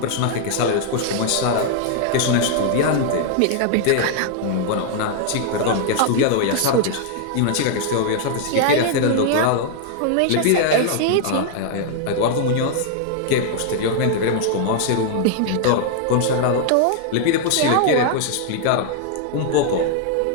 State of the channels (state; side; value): different; both; correlation 0.00